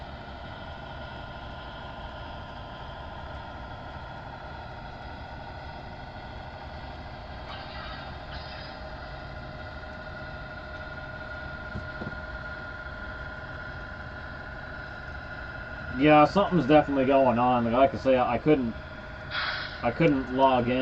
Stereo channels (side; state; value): both; identical; correlation 1.00